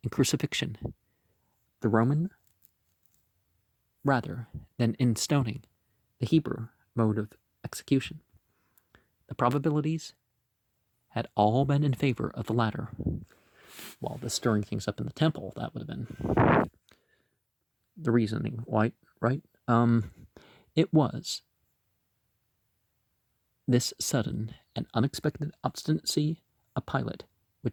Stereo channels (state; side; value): identical; both; correlation 1.00